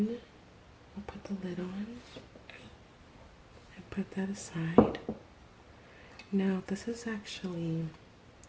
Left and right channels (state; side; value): identical; both; correlation 1.00